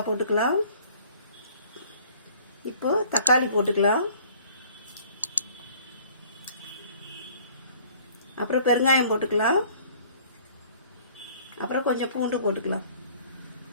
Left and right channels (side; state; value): both; inverted; correlation -0.55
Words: போட்டுக்கலாம். இப்போ தக்காளி போட்டுக்கலாம். அப்புறம் பெருங்காயம் போட்டுக்கலாம். அப்புறம் கொஞ்சம் பூண்டு போட்டுக்கலாம்.